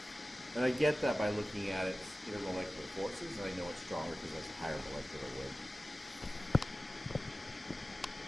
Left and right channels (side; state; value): both; normal; correlation 0.96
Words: And I get that by looking at its intermolecular forces, and I know it's stronger because it has a higher molecular weight.